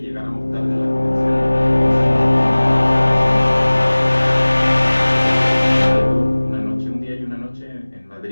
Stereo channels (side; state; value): both; inverted; correlation -1.00